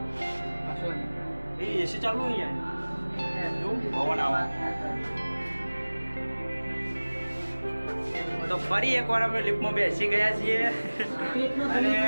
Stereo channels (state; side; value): inverted; both; correlation -1.00